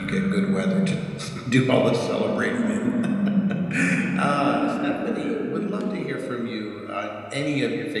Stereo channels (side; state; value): both; identical; correlation 1.00